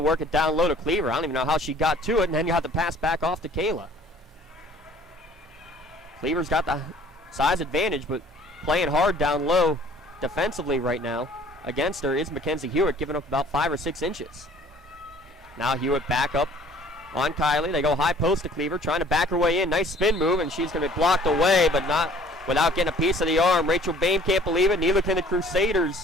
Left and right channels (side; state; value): both; normal; correlation 0.53